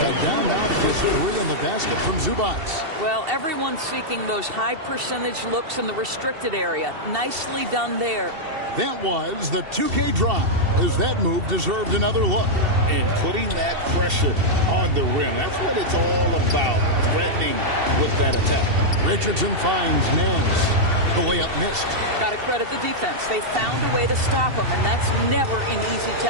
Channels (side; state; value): left; late; 2.7 ms